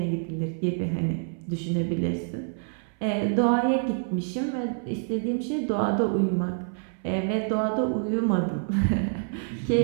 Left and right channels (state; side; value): silent; left; 60 dB below the other